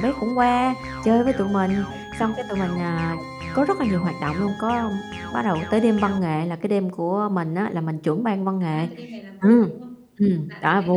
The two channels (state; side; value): identical; both; correlation 1.00